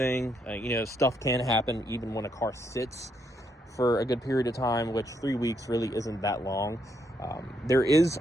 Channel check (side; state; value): both; normal; correlation 0.76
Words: Stuff can happen even when a car sits for a good period of time, which 3 weeks really isn't that long. There is